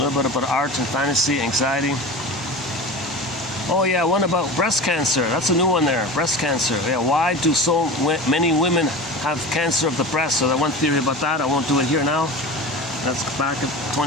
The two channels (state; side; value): normal; both; correlation 0.31